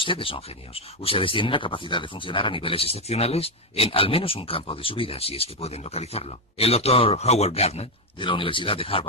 son genios. Ustedes tienen la capacidad de funcionar a niveles excepcionales en al menos un campo de su vida, si es que pueden localizarlo. El doctor Howard Gardner, de la Universidad de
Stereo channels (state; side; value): normal; both; correlation 0.06